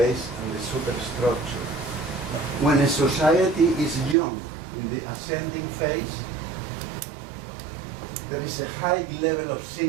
and the superstructure. When a society is young, in the ascending phase, there is a high level of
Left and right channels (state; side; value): drops out; left; at 4.2 s